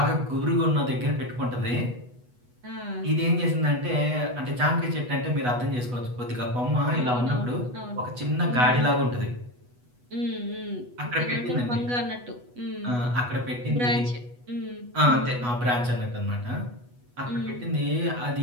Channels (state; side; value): late; left; 8.2 ms